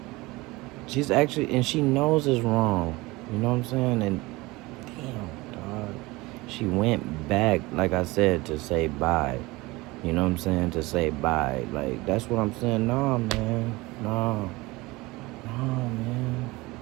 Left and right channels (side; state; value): left; quieter; 21.8 dB